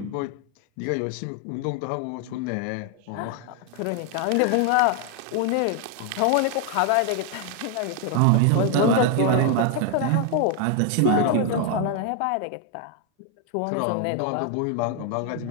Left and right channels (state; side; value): different; both; correlation 0.00